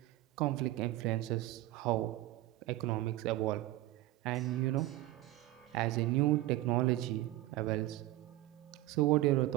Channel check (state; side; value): quieter; left; 16.7 dB